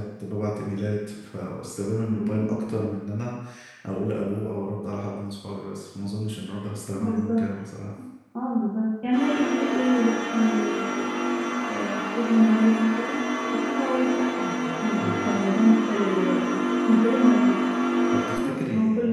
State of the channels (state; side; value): identical; both; correlation 1.00